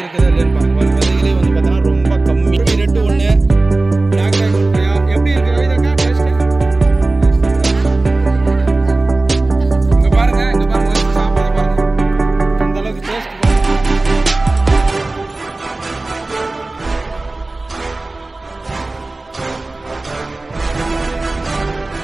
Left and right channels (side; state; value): left; quieter; 3.1 dB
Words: இருக்குதா இல்லைன்னு பாருங்க. விதைகளே வந்து பார்த்தீங்கன்னா ரொம்ப கம்மி. ரெட்டு ஒன்று பிளாக் ட்ராகன் கொய்யா எப்படி இருக்கு கவிதாக்கா டேஸ்ட்டு? இங்கே பாருங்க சாப்பிட பாருங்க அந்த அளவுக்கு taste.